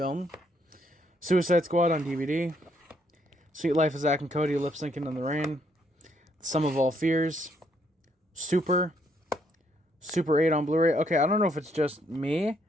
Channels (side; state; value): both; normal; correlation 0.72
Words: Suicide Squad on DVD. Sweet Life of Zack and Cody lip syncing in the rain. Sum of All Fears. Super 8 on Blu-ray. Okay, I don't know if it's just me.